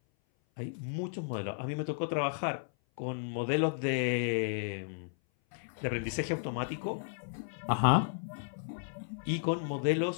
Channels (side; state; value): right; silent; 55 dB below the other